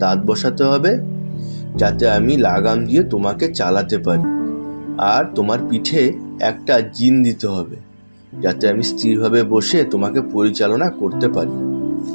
দাঁত বসাতে হবে, যাতে আমি লাগাম দিয়ে তোমাকে চালাতে পারি, আর তোমার পিঠে একটা জিন দিতে হবে, যাতে আমি স্থিরভাবে বসে তোমাকে পরিচালনা করতে পারি।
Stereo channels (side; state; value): both; inverted; correlation -1.00